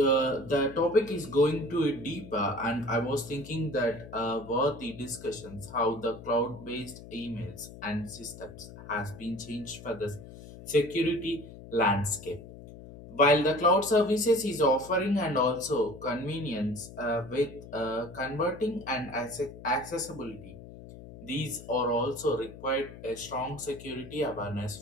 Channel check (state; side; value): noise; left; hum, 15 dB below the sound